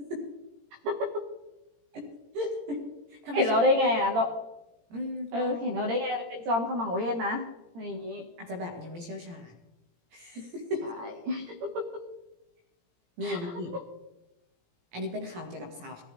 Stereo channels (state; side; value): late; left; 18 ms